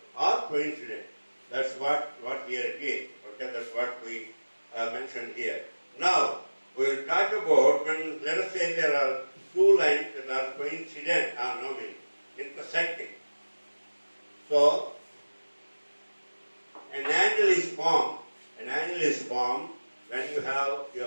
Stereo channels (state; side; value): inverted; both; correlation -1.00